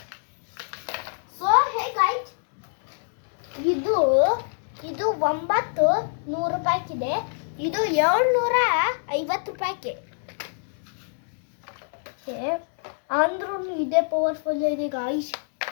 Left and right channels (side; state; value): right; silent; digital silence